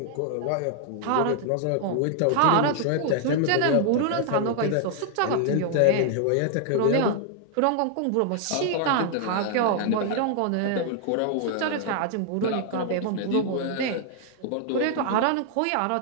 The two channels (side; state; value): both; different; correlation 0.00